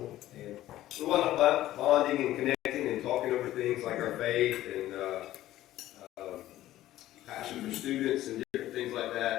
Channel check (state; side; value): quieter; right; 14.5 dB